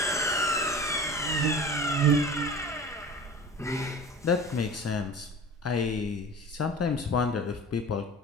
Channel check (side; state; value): both; normal; correlation 0.37